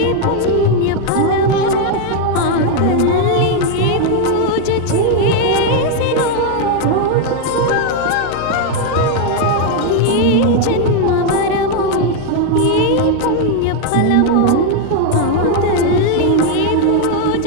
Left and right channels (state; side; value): different; both; correlation 0.01